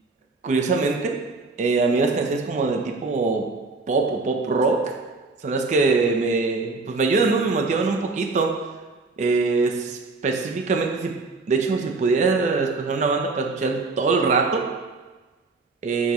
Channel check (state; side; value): quieter; left; 3.7 dB